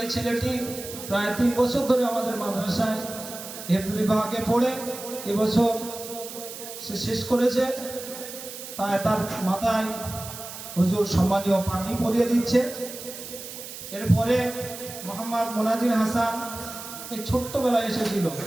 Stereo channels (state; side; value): noise; right; hiss, 11 dB below the sound